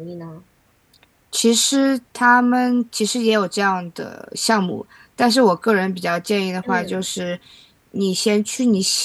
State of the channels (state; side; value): identical; both; correlation 1.00